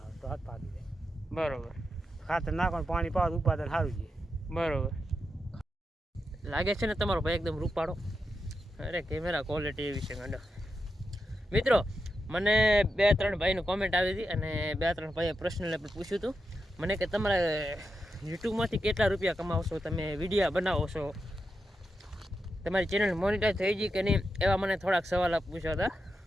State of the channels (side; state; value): both; normal; correlation 0.87